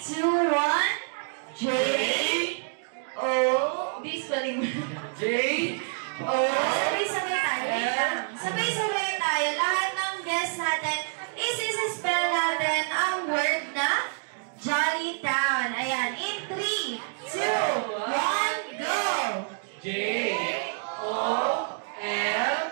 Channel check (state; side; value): silent; left; digital silence